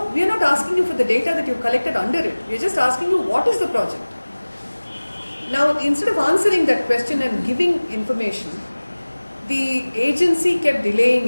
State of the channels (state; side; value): inverted; both; correlation -1.00